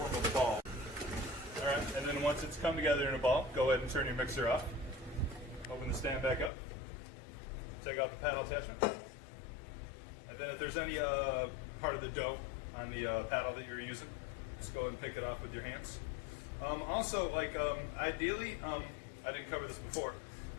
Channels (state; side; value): drops out; right; at 6.5 s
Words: a ball. All right, and then once it's come together in a ball, go ahead and turn your mixer off. Open the stand back up. Take out the paddle attachment. And then if there's any part of the dough on the paddle that you're using, just go ahead and pick it off with your hands. Also, ideally, I didn't cover this before,